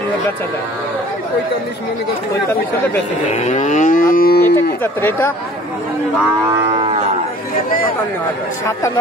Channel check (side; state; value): both; normal; correlation 0.50